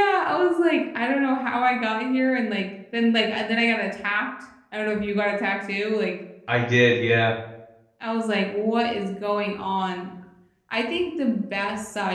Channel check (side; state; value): both; identical; correlation 1.00